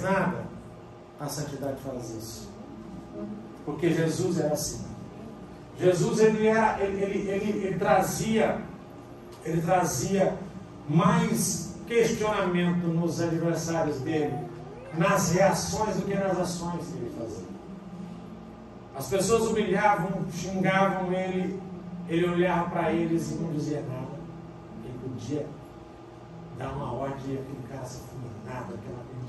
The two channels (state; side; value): identical; both; correlation 1.00